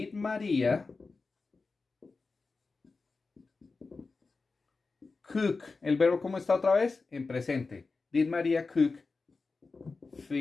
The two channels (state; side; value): quieter; right; 4.1 dB